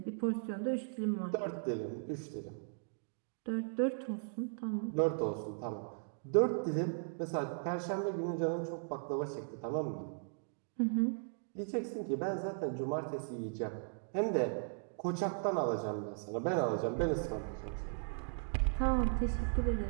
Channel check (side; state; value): left; silent; digital silence